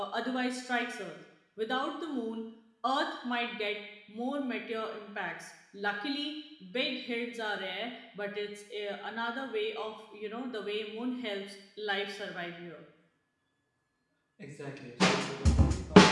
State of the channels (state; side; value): identical; both; correlation 1.00